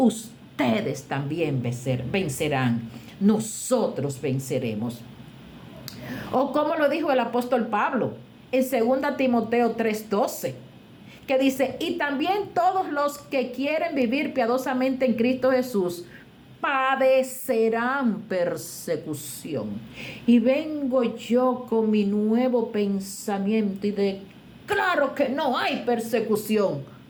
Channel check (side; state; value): both; identical; correlation 1.00